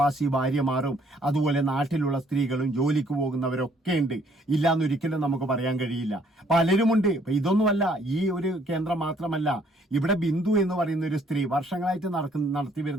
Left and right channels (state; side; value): normal; both; correlation 0.64